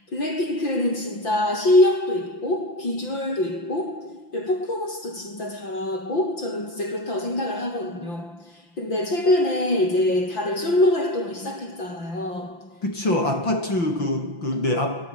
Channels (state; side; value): late; right; 5.9 ms